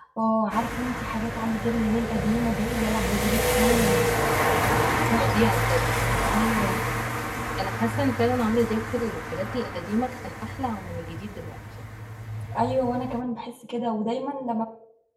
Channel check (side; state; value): both; identical; correlation 1.00